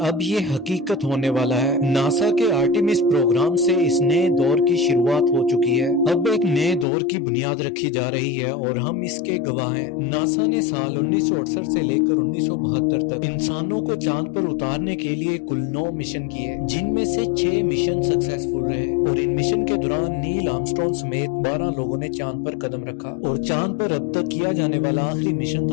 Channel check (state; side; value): drops out; right; at 6.9 s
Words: اب یہ حقیقت ہونے والا ہے۔ ناسا کے آرٹیمس پروگرام سے اس نئے دور کی شروعات ہو چکی ہے۔ اب ایک نئے دور کی بنیاد رکھی جا رہی ہے اور ہم اس کے گواہ ہیں۔ ناسا نے سال 1968 سے لے کر 1972 تک انسانوں کو چاند پر اتارنے کے لیے کل 9 مشن کیے، جن میں سے 6 مشن سکسیسفل رہے، اور ان مشن کے دوران نیل آرمسٹرانگ سمیت 12 لوگوں نے چاند پر قدم رکھا۔ اور چاند پر اب تک کیا جانے والا آخری مشن